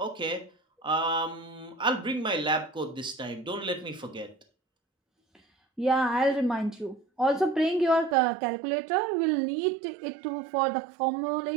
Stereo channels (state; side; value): drops out; left; at 8.2 s